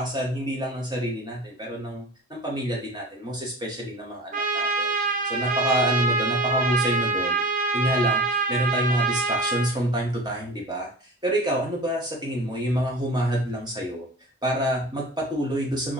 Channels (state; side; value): normal; both; correlation 0.36